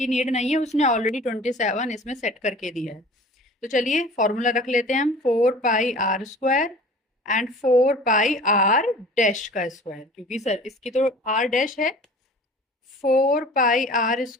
नीड नहीं है, उसने ऑलरेडी 27 इसमें सेट करके दिया है। तो चलिए फॉर्मूला रख लेते हैं हम, 4 pi r square and 4 pi r dash का स्क्वायर, क्योंकि सर इसकी तो आर डैश है। 4 pi r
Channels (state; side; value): normal; both; correlation 0.44